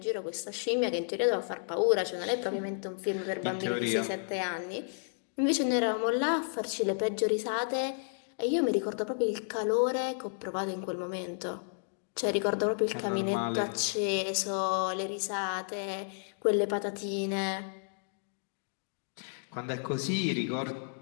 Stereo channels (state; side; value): silent; right; digital silence